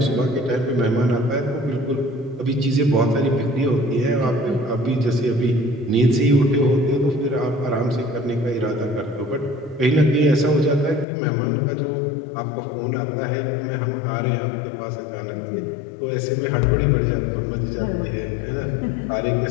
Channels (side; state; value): right; drops out; at 11.1 s